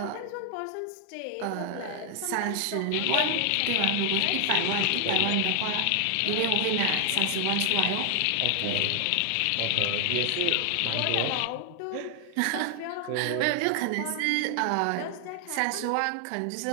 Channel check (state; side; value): different; both; correlation 0.00